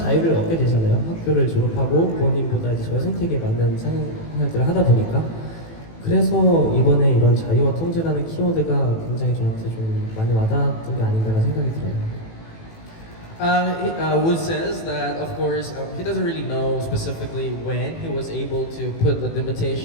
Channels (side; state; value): right; late; 18 ms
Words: 얻게 되잖아요. 학교를 졸업하고 부모님보다 이제 저의 선택에 맞는 생활들을 하다 보니까 그래서 이번에 이런 자유와 통제라는 키워드가 굉장히 저한테 좀 많이 와닿았던 게 아닌가라는 생각이 들어요. Wood says that, of course, he doesn't really know specifically when he was able to put the